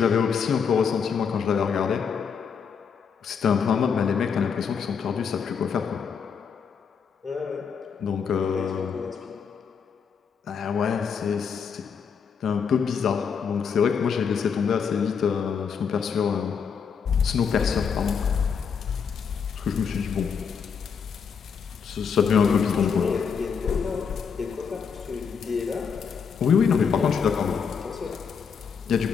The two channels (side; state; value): right; quieter; 6.5 dB